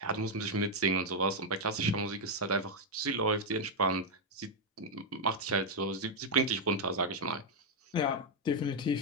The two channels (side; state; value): both; normal; correlation 0.00